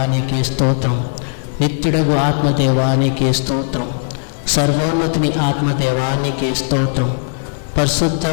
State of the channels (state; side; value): silent; right; 68 dB below the other